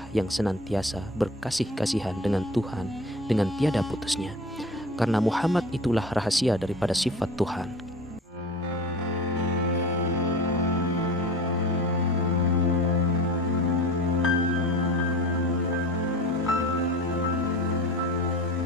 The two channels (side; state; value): both; normal; correlation 0.37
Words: yang senantiasa berkasih-kasihan dengan Tuhan dengan tiada putusnya. Karena Muhammad itulah rahasia daripada sifat Tuhan.